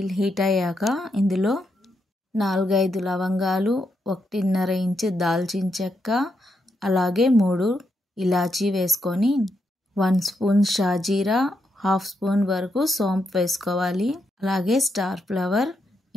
హీట్ అయ్యాక ఇందులో 4-5 లవంగాలు, 1.5 ఇంచు దాల్చిన చెక్క, అలాగే 3 ఇలాచీ వేసుకొని 1 స్పూన్ షాజీరా, 1/2 స్పూన్ వరకు సోంపు వేసుకోవాలి. అలాగే స్టార్ ఫ్లవర్,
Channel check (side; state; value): both; normal; correlation 0.81